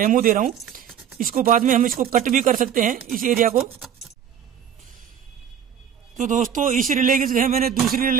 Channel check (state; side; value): quieter; left; 8.6 dB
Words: दे रहा हूँ। इसको बाद में हम इसको कट भी कर सकते हैं इस एरिया को। तो दोस्तों इस रिले की जगह मैंने दूसरी